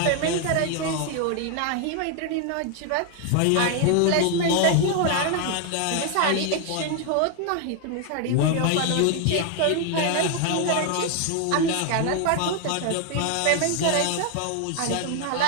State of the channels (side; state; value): both; different; correlation 0.00